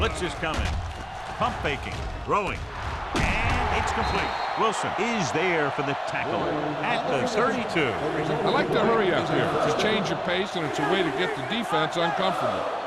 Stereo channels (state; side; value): identical; both; correlation 1.00